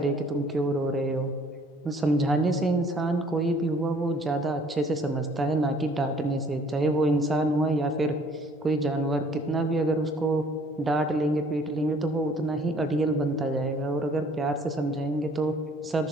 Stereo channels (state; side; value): normal; both; correlation 0.57